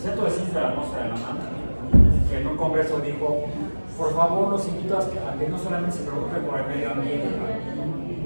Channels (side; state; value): both; inverted; correlation -1.00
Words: Ciencias de la Atmósfera de la UNAM que en un congreso dijo: por favor, los invito a que no solamente se preocupen por el medio ambiente.